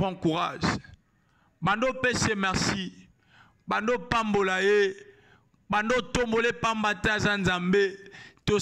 courage. Bando pese merci. Bando pambola ye. Bando tombole pambata zanzambe. To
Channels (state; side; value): identical; both; correlation 1.00